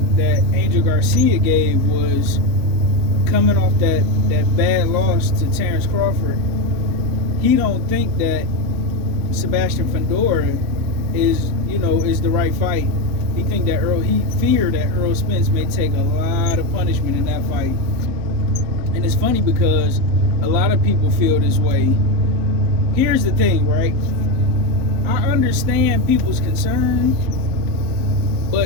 that Angel Garcia gave was coming off that bad loss to Terrence Crawford. He don't think that Sebastian Fundora is the right fight. He feared that Errol Spence may take a lot of punishment in that fight. And it's funny because a lot of people feel this way. Here's the thing, right? I understand people's concern,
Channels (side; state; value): left; late; 4.1 ms